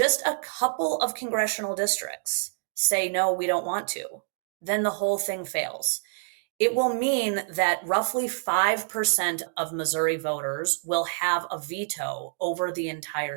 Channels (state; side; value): silent; left; 60 dB below the other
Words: a couple of congressional districts say, no, we don't want to, then the whole thing fails. It will mean that roughly 5% of Missouri voters will have a veto over the